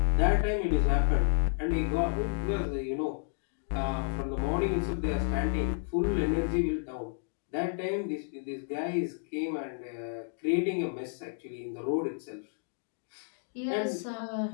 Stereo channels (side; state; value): right; silent; digital silence